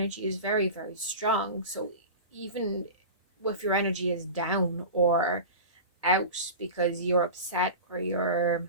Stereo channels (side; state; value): both; inverted; correlation -0.30